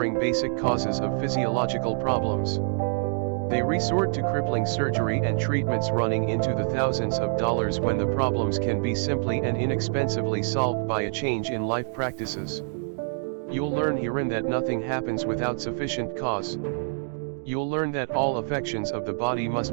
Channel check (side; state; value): left; silent; digital silence